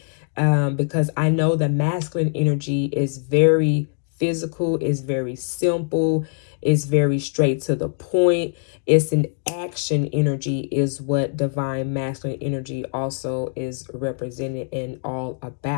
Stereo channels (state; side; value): silent; right; digital silence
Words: Because I know the masculine energy is very physical, is very simple, is very straight to the point. It's an action energy, is what divine masculine energy also is represented and all